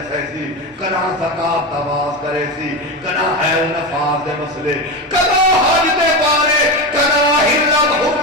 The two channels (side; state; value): both; normal; correlation 0.19